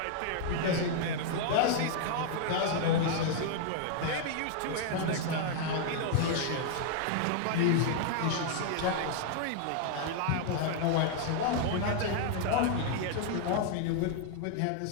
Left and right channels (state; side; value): different; both; correlation 0.00